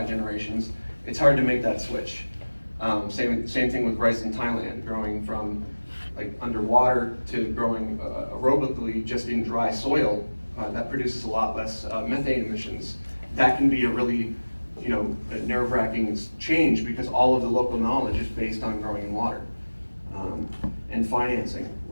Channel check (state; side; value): inverted; both; correlation -1.00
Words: generations, it's hard to make that switch. Same thing with rice in Thailand, growing from like underwater to growing aerobically just in dry soil. That produces a lot less methane emissions. That can be a really, you know, a nerve-wracking change because all of the local knowledge is based on growing in water. And financing,